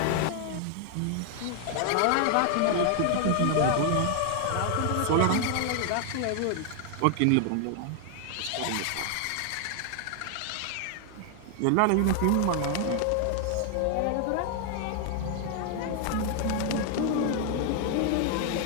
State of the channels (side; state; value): both; different; correlation 0.00